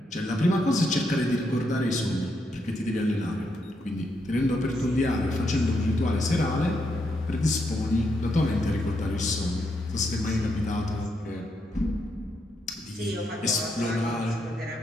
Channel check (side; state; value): both; normal; correlation 0.79